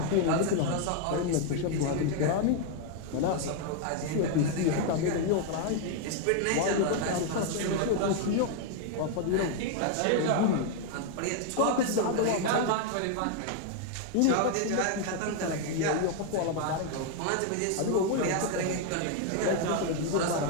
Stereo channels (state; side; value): different; both; correlation 0.00